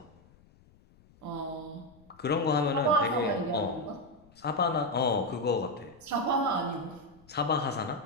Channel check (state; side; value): noise; left; rumble, 28 dB below the sound